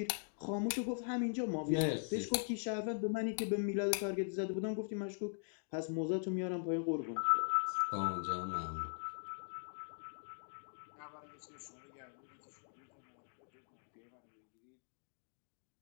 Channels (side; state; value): right; silent; digital silence